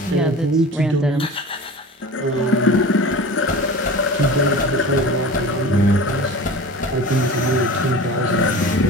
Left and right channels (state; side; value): normal; both; correlation 0.36